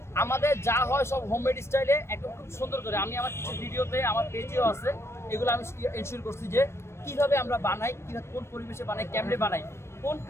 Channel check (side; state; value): right; late; 0.13 ms